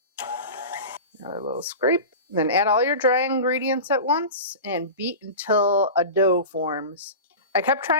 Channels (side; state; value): both; inverted; correlation -0.30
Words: Another little scrape. Then add all your dry ingredients at once and beat until a dough forms. I kept